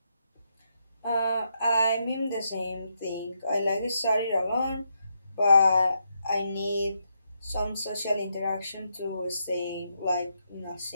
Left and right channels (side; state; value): both; inverted; correlation -0.81